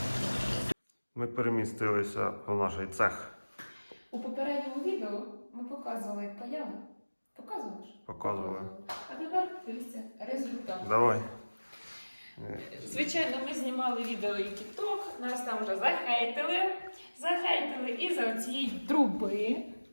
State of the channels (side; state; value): both; inverted; correlation -1.00